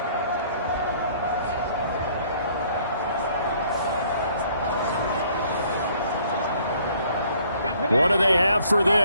What do they have for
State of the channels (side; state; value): both; inverted; correlation -0.60